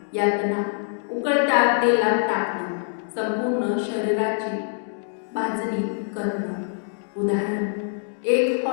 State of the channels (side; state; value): right; silent; digital silence